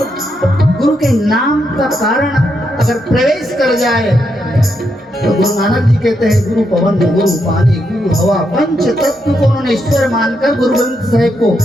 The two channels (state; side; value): normal; both; correlation 0.81